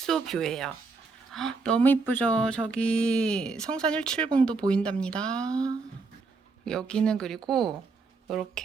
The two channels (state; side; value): quieter; left; 4.3 dB